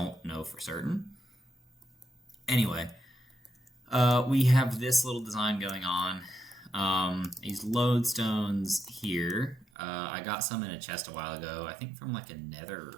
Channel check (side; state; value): left; drops out; at 9.7 s